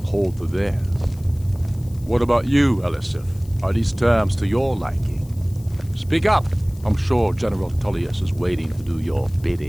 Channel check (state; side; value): noise; left; hiss, 25 dB below the sound